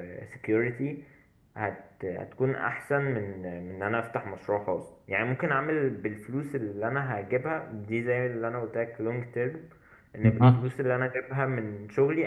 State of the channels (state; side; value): identical; both; correlation 1.00